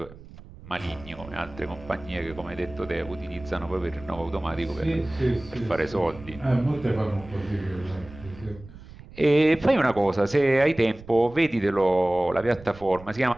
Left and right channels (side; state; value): right; noise; rumble, 18 dB below the sound